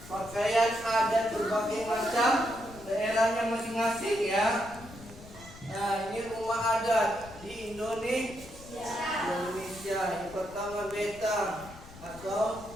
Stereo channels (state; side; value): noise; left; rumble, 18 dB below the sound